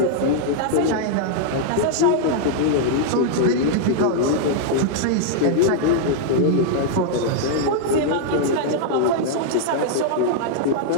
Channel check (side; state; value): both; different; correlation -0.01